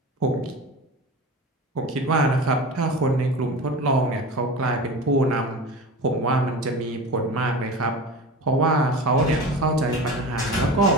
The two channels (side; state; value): both; normal; correlation 0.32